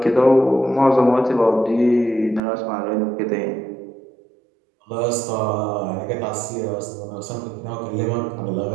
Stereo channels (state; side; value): drops out; left; at 2.4 s